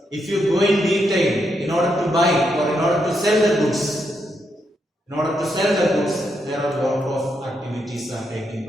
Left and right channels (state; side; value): normal; both; correlation 0.80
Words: if you go in detail, in order to buy or in order to sell the goods, there are a lot of activities are taking